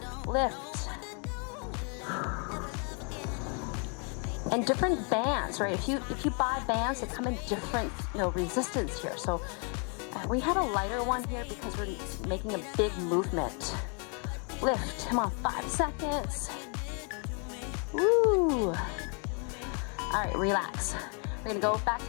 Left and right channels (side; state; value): right; quieter; 37.8 dB